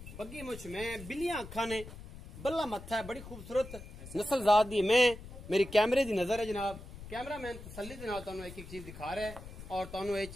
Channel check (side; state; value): left; noise; rumble, 14 dB below the sound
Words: बग्गी मुछ में, बिल्लियां अखां ने, बल्ला मत्था है, बड़ी खूबसूरत नस्ल जात दी मैं। मेरी कैमरे की नजर है जनाब। कैमरामैन तसल्ली दे नाल तुहानू एक एक चीज दिखा रहा है और तुहानू ये